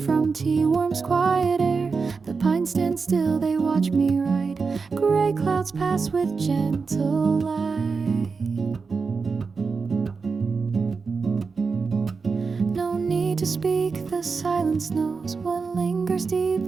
tea warms quiet air. The pines stand still, they watch me write. Gray clouds pass with gentle light. No need to speak, the silence knows what lingers deep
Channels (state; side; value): quieter; left; 4.8 dB